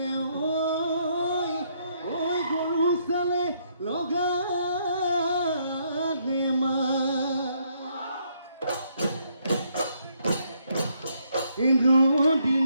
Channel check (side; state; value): both; inverted; correlation -0.72